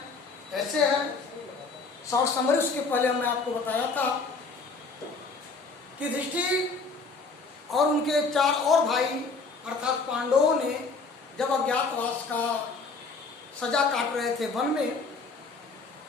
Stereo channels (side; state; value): right; quieter; 4.3 dB